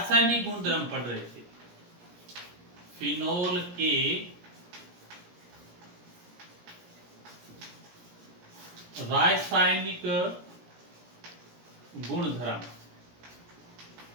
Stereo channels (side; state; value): left; late; 17 ms